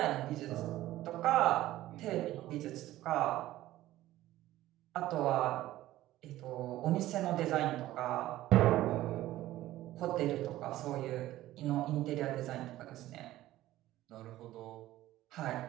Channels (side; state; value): left; quieter; 15.2 dB